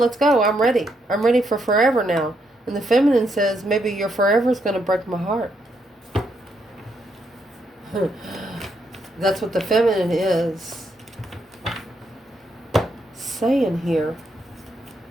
go. I'm ready. I'm ready for forever now. And the feminine says, maybe your forever is going to break my heart. That's what the feminine is saying here.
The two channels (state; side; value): normal; both; correlation 0.77